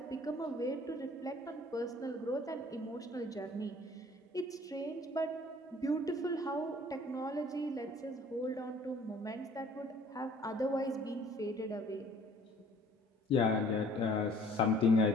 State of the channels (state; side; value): normal; both; correlation 0.55